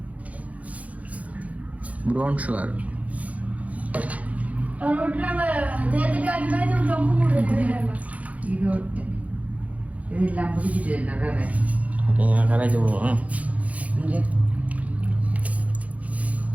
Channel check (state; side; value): late; left; 0.069 ms